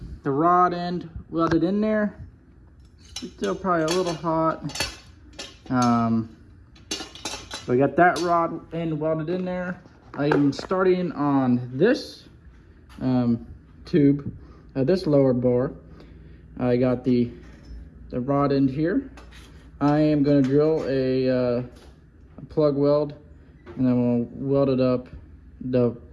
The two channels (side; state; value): both; identical; correlation 1.00